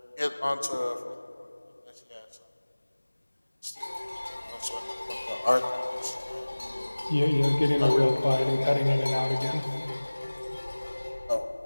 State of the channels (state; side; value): inverted; both; correlation -1.00